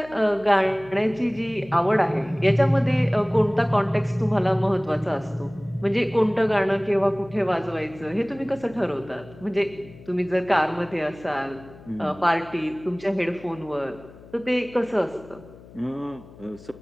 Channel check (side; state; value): left; noise; hum, 21 dB below the sound